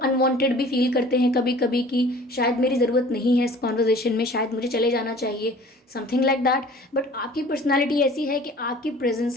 भी फील करते हैं कभी कभी कि शायद मेरी ज़रूरत नहीं है इस कॉन्वर्जेशन में, शायद मुझे चले जाना चाहिए, समथिंग लाइक दैट। बट आपकी पर्सनालिटी ऐसी है कि आपकी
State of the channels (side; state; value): both; normal; correlation 0.48